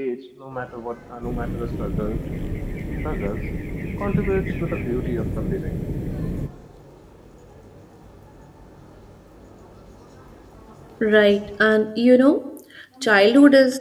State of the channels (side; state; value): both; identical; correlation 1.00